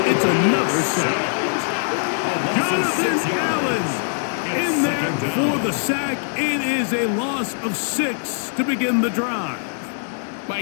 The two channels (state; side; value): silent; right; digital silence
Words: It's another sack. Jonathan Allen in there for the sack. It is a loss of 6 to begin the drive.